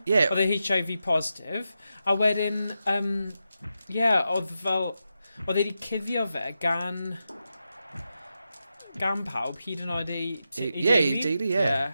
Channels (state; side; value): inverted; both; correlation -0.89